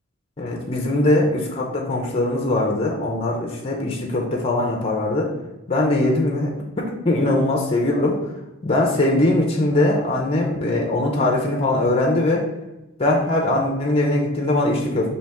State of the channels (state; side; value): normal; both; correlation 0.42